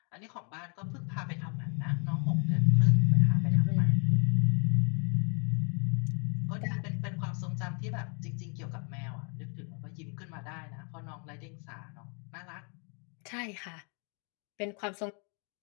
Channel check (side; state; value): right; quieter; 37.8 dB